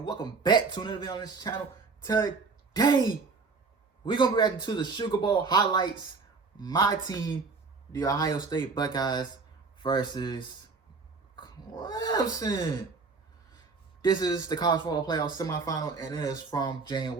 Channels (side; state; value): left; quieter; 4.4 dB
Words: welcome back to another video on this channel. Today, we're gonna be reacting to the Sugar Bowl highlights. My team, the Ohio State Buckeyes, versus Clemson. This is the college football playoff semifinal, and it is from